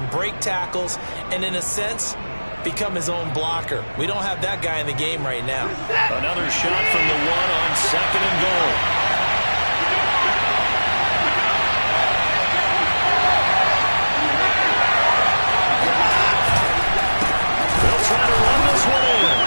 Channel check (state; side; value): inverted; both; correlation -1.00